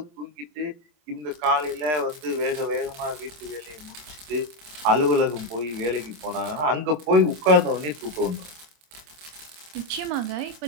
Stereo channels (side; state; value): left; late; 26 ms